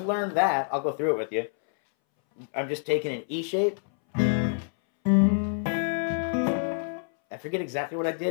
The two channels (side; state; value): right; silent; 60 dB below the other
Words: learn that, I'll go through it with you. I'm just taking an E shape. I forget exactly what I